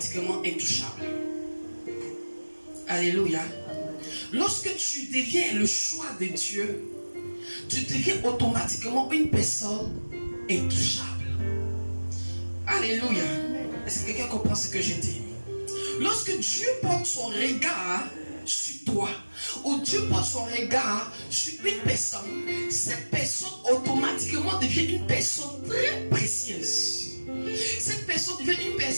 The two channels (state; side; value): inverted; both; correlation -1.00